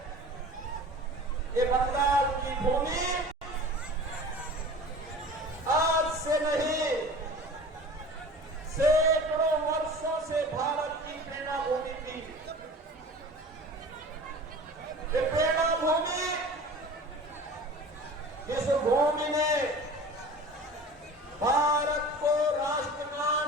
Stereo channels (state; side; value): normal; both; correlation 0.40